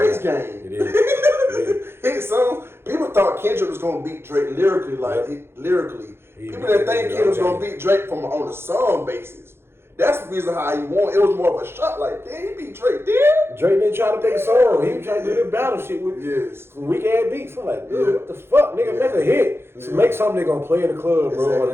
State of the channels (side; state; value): left; late; 0.12 ms